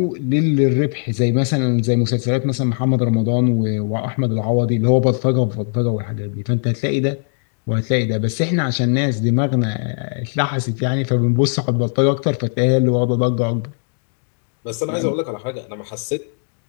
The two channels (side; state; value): right; silent; digital silence